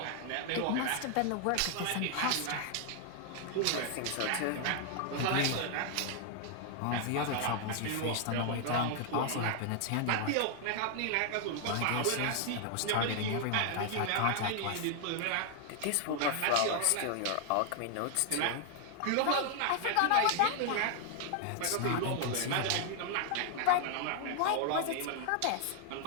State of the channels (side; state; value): both; different; correlation 0.00